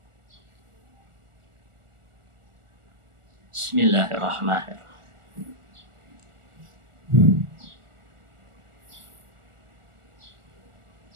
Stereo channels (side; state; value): left; late; 1.4 ms